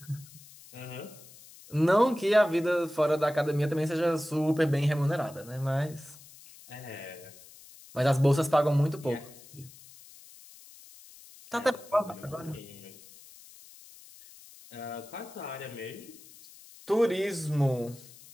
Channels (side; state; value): left; noise; hiss, 21 dB below the sound